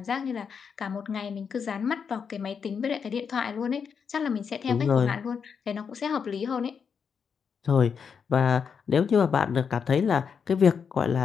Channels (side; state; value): right; quieter; 6.5 dB